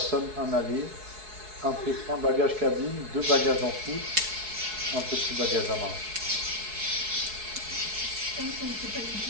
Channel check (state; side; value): late; left; 4.7 ms